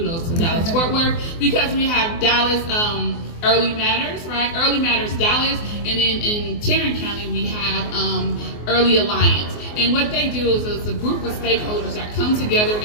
to Dallas Fort Worth, because we have Dallas Early Matters, right? Early Matters Dallas, and then in Tarrant County we have Early Alliance. And what they do is it's a group of stakeholders that come together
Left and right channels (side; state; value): right; late; 24 ms